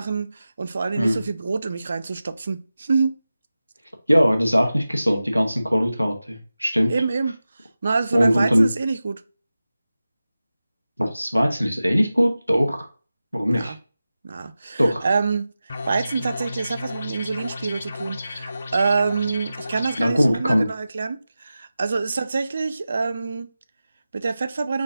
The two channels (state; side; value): inverted; both; correlation -0.94